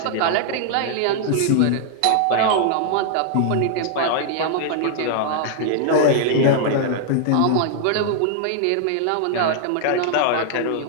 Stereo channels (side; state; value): both; different; correlation -0.01